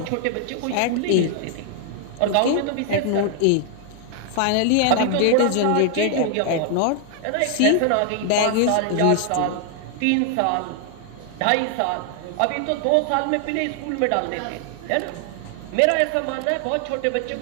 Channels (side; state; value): both; different; correlation 0.00